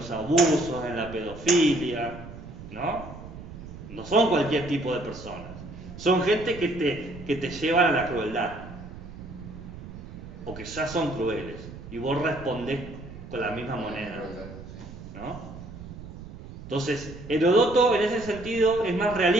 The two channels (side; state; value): right; noise; rumble, 13 dB below the sound